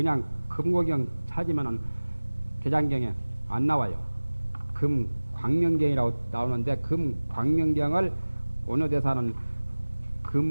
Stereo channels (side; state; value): both; inverted; correlation -1.00